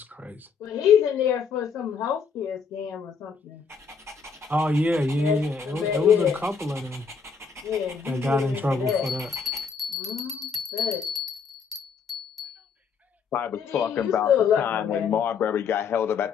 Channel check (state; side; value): quieter; right; 5.7 dB